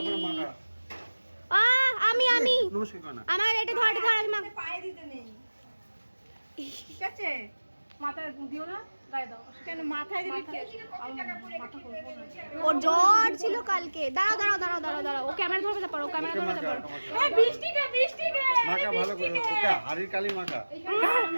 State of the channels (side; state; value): both; inverted; correlation -1.00